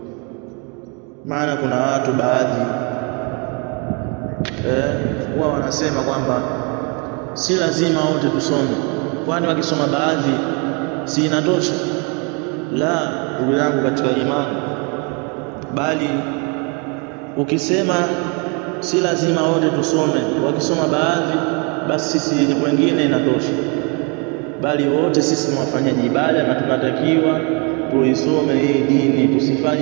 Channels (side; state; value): left; quieter; 32.8 dB